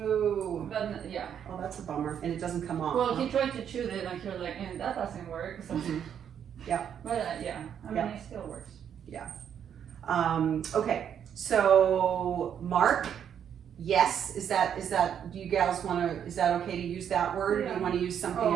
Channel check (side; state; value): left; quieter; 8.7 dB